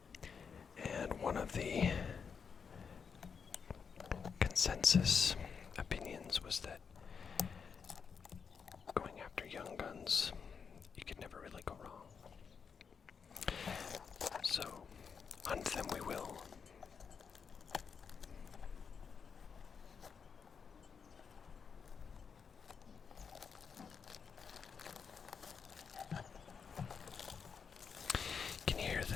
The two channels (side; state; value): right; quieter; 6.2 dB